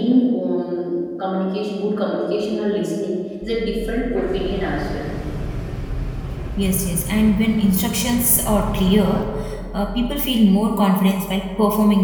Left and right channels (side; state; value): both; identical; correlation 1.00